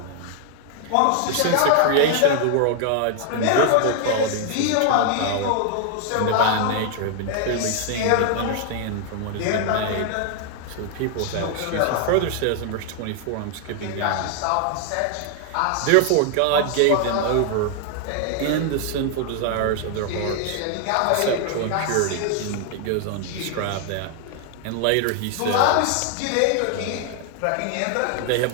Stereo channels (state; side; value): different; both; correlation 0.00